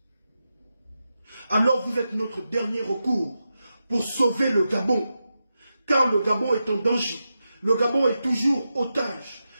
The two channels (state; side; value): inverted; both; correlation -0.89